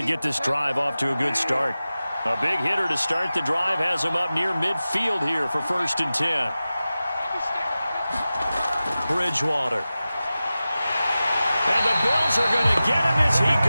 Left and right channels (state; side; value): inverted; both; correlation -0.95